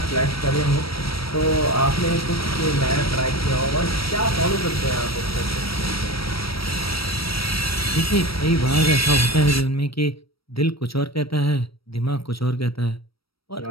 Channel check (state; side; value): late; right; 0.75 ms